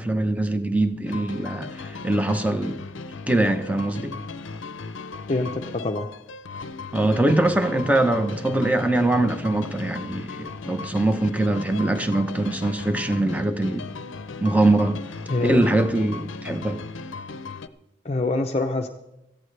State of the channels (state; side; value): normal; both; correlation 0.85